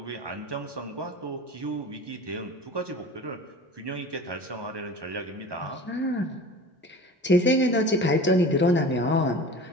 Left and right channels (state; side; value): normal; both; correlation 0.37